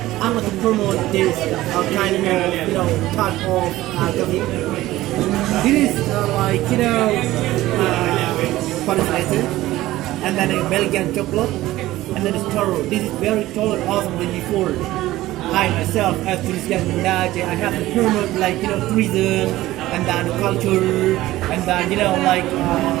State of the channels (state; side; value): quieter; left; 16.4 dB